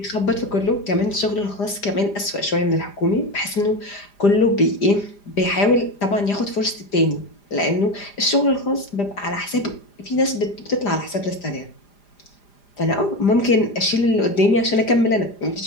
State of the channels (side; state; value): right; late; 5.0 ms